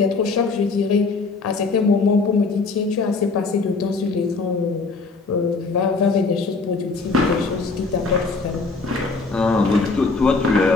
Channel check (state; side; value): quieter; right; 4.0 dB